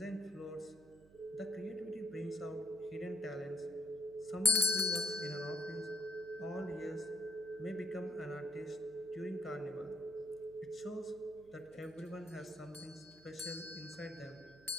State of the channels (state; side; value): noise; right; hum, 24 dB below the sound